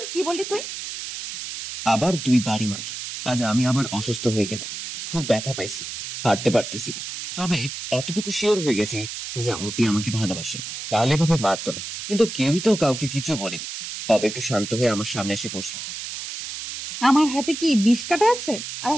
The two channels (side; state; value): right; noise; hiss, 8 dB below the sound